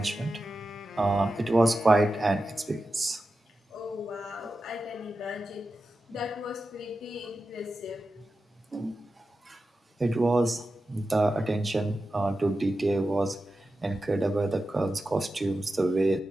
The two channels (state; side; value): normal; both; correlation 0.92